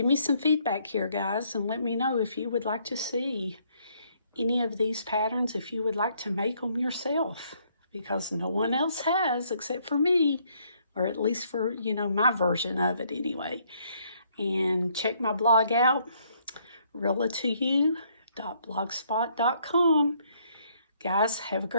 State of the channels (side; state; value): both; inverted; correlation -0.68